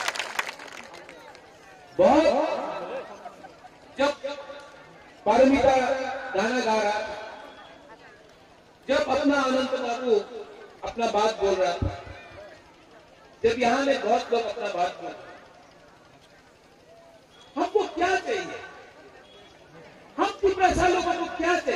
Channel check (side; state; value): both; identical; correlation 1.00